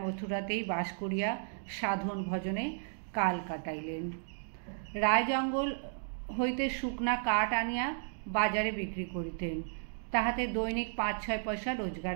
মথুরাতেই বাস করিয়া সাধন ভজনে কাল কাটাইলেন। রায় জঙ্গল হইতে শুকনা কাঠ আনিয়া বাজারে বিক্রি করিতেন। তাহাতে দৈনিক ৫-৬ পয়সা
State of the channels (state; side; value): silent; left; digital silence